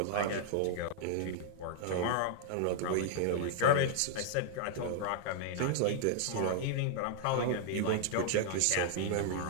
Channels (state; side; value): different; both; correlation -0.01